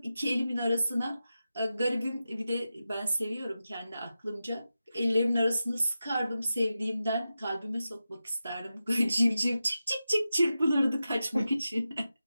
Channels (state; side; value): inverted; both; correlation -0.92